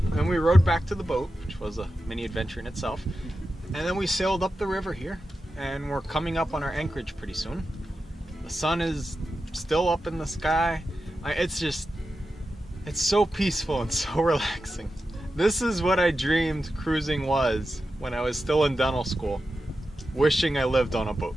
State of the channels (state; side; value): normal; both; correlation 0.91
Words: And we rode back to the boat, which was a mini adventure in itself. And then we sailed up the river here, and we're coming up on our anchorage pretty soon. The sun is still up in the sky. It's so peaceful and so relaxing. This is what I dreamed cruising was when I was still in dental school, wishing I lived on a boat.